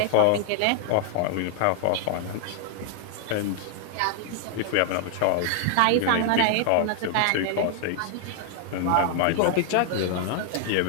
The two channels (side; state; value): both; different; correlation 0.00